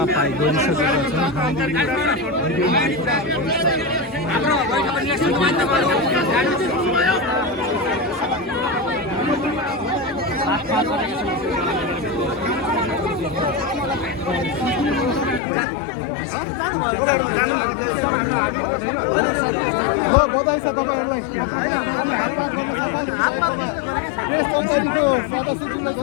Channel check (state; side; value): drops out; right; at 15.4 s